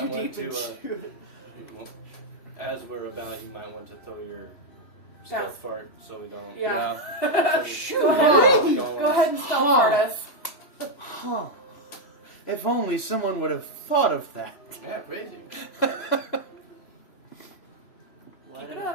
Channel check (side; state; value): right; late; 3.1 ms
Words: might want deep to, into it. As we're about, you might want to throw your stealth fart so we don't. Yeah. Shoot! Go ahead. Go ahead and stealth fart us. Huh. If only someone would have thought of that. Yeah, crazy. Keep it